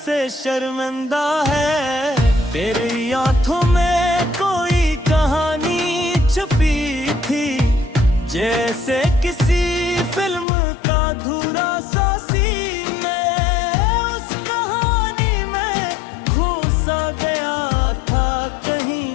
से शर्मिंदा है। तेरी आंखों में कोई कहानी छुपी थी, जैसे किसी फिल्म का अधूरा सा सीन में। उस कहानी में खो सा गया था कहीं,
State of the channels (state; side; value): drops out; right; at 10.5 s